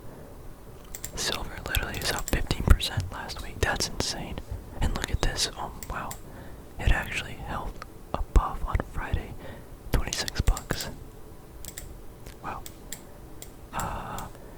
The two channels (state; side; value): identical; both; correlation 1.00